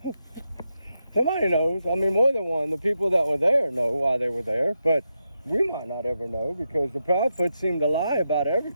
Somebody knows. More than one. The people that were there know why they were there, but we might not ever know, because the Proudfoots seem to lie about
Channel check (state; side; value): inverted; both; correlation -0.86